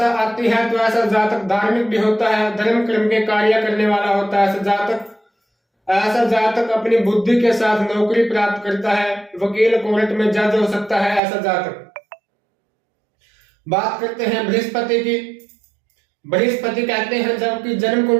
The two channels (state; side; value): drops out; left; at 11.2 s